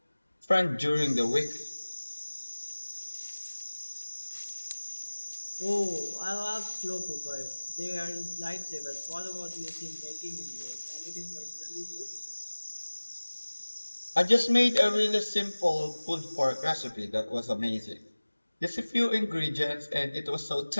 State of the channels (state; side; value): inverted; both; correlation -1.00